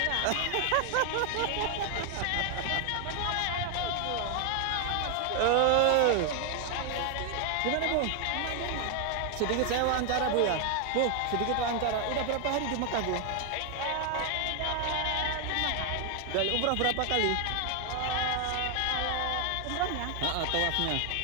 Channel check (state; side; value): different; both; correlation 0.00